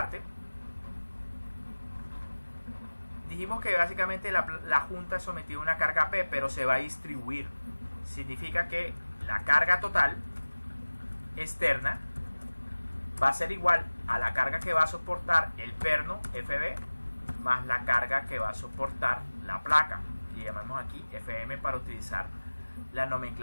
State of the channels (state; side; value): inverted; both; correlation -1.00